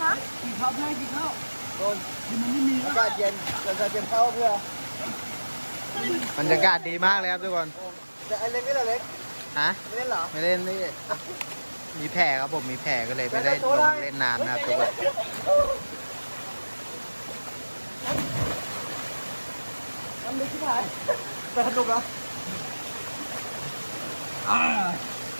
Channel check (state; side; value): inverted; both; correlation -1.00